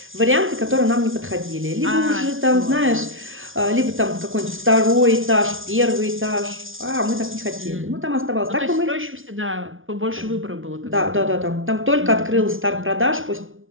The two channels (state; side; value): late; left; 0.58 ms